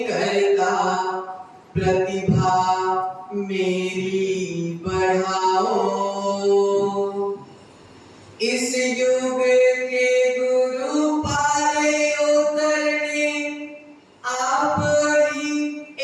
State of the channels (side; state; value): both; identical; correlation 1.00